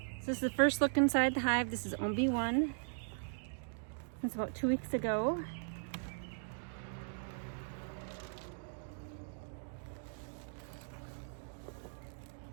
So this is the first look inside the hive. This is OB1. It's about 2 weeks ago.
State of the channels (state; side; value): silent; left; digital silence